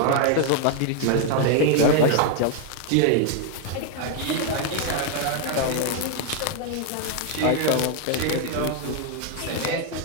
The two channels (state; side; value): different; both; correlation 0.00